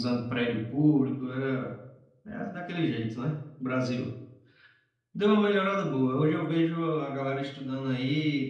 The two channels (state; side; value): identical; both; correlation 1.00